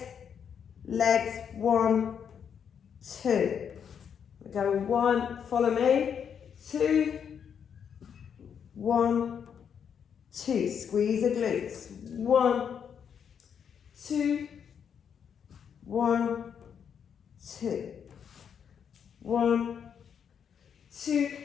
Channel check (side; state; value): right; quieter; 7.7 dB